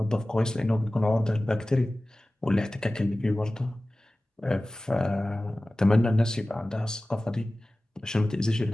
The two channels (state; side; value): normal; both; correlation 0.97